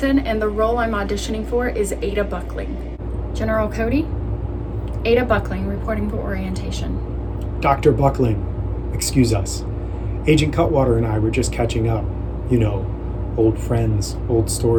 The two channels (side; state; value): both; identical; correlation 1.00